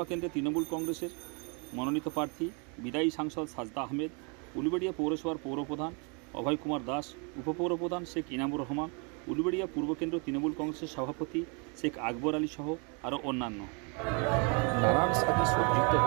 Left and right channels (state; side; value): quieter; left; 34.5 dB